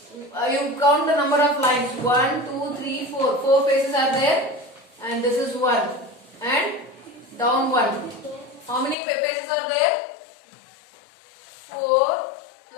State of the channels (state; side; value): drops out; right; at 9.0 s